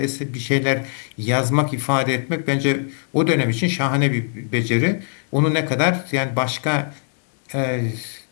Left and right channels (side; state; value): right; silent; 65 dB below the other